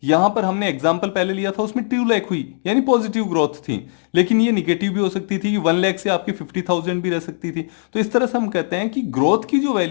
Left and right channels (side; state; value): right; silent; digital silence